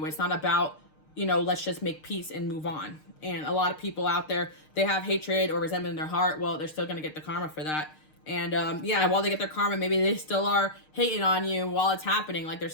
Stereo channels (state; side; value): late; right; 6.5 ms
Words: It's not about, you know, let's just make peace and move on. And a lot of people out there, they have hatred or resentment in their heart. Well, they're still going to get the karma for that. And yeah, while they get their karma, maybe they still are hating on you while it's happening. Like, they're